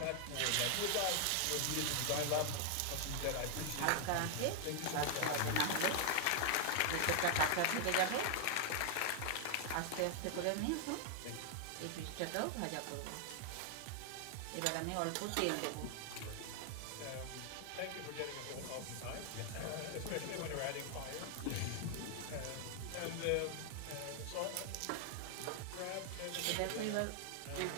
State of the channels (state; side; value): different; both; correlation 0.00